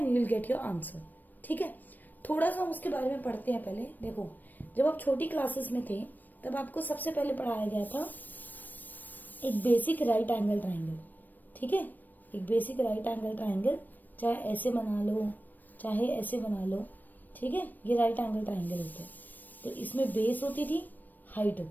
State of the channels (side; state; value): right; late; 0.088 ms